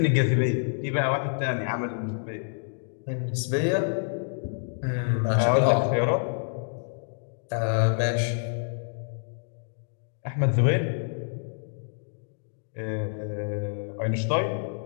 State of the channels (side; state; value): right; silent; digital silence